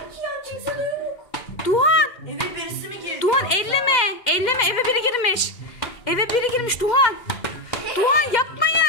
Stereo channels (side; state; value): right; late; 2.1 ms